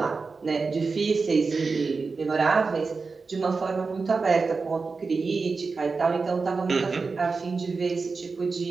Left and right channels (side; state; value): left; quieter; 4.4 dB